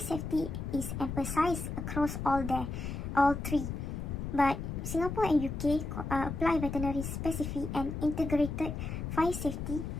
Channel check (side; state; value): left; noise; rumble, 5 dB below the sound